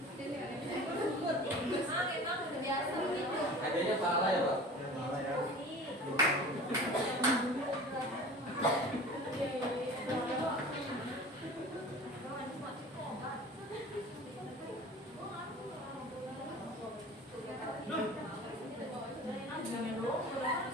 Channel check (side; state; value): both; normal; correlation 0.40